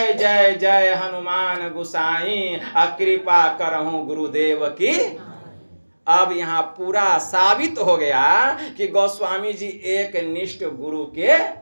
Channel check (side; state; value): both; inverted; correlation -1.00